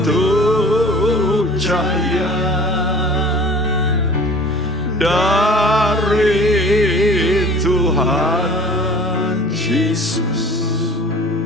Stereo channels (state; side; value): normal; both; correlation 0.45